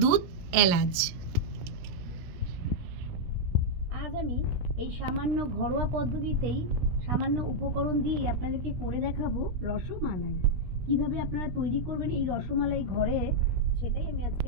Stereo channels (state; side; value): late; left; 17 ms